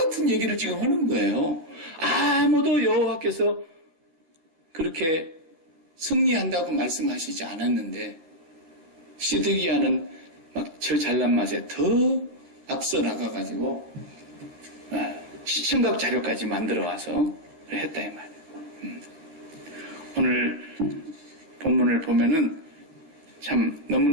얘기를 지금 하는 거예요. 아무도 여호와께서 그렇게 승리한다고 말씀하시지 않았는데 시드기야는 막 저 잘난 맛에 더 앞서 나가가지고 시청각 자료까지 만들어 와서 했다 이 말이에요. 오늘 본문을 보면은 참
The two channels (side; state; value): left; late; 13 ms